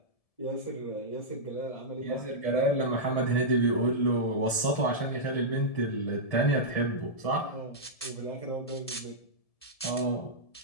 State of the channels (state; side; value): late; right; 1.7 ms